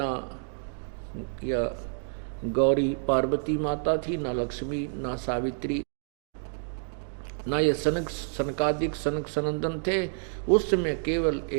या गौरी पार्वती माता थी, ना लक्ष्मी, ना सावित्री, ना ये सनकादिक सनक सनंदन थे। उस समय केवल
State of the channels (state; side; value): silent; left; digital silence